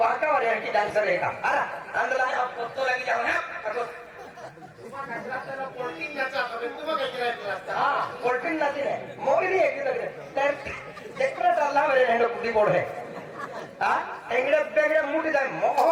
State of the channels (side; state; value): both; identical; correlation 1.00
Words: वाले की डांसर है का अरे अंदर आप तो लगी जाओ ना पोल्टिंग नाचा तुम्हाला काय करायचं हां पोल्टिंग नाची है मोगली है की लगे तर सेक्रेट अल्लाह मेरे हैंडो कुटी बोर्ड है हां एंगड़े बेगड़े मुड़ी जाए